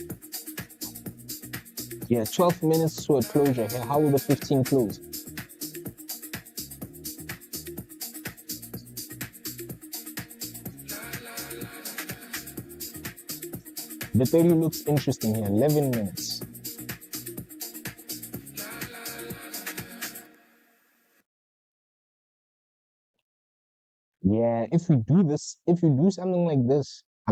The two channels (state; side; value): identical; both; correlation 1.00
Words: Yeah, 12 minutes to a closure here. How will the 15 close? The 30 looks interesting here. 11 minutes. Yeah, if we do this, if we do something like this,